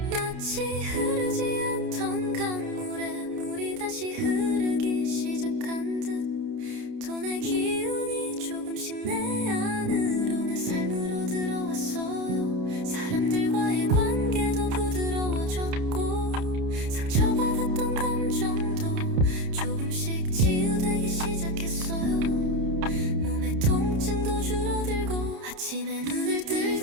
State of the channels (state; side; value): late; left; 30 ms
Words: 마치 흐르지 않던 강물에 물이 다시 흐르기 시작한 듯 돈의 기운이 조금씩 내 안으로 내 삶으로 들어왔어요. 사람들과의 관계도 부드러워졌고 상처받았던 감정도 조금씩 치유되기 시작했어요. 몸의 통증도 줄어들고 아침에 눈을 뜰